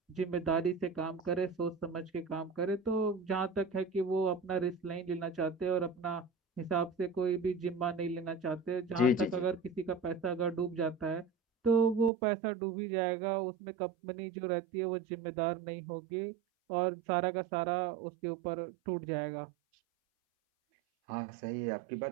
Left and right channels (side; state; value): left; drops out; at 12.1 s